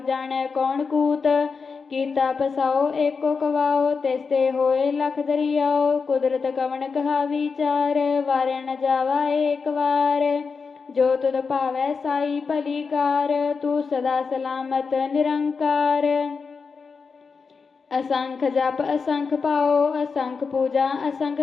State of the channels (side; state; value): right; quieter; 5.1 dB